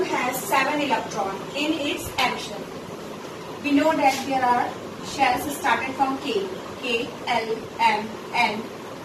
has 7 electrons in its M shell. We know that there are shells started from K, L, M, N,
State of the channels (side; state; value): both; identical; correlation 1.00